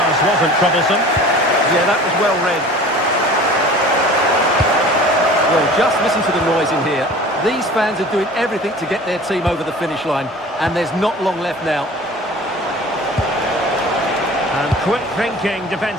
wasn't troublesome. Yeah, that was well read. Well, just listen to the noise in here. These fans are doing everything to get their team over the finish line, and there's not long left now. And quick thinking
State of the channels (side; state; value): both; normal; correlation 0.43